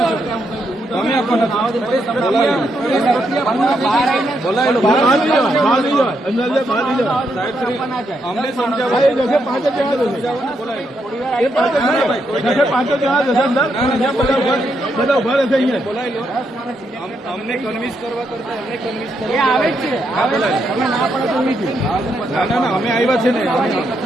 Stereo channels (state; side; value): normal; both; correlation 0.79